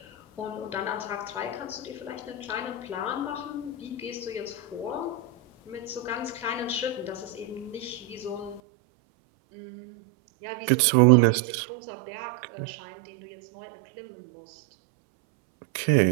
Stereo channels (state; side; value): drops out; left; at 8.6 s